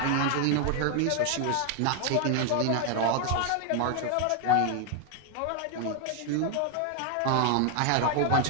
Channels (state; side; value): different; both; correlation 0.01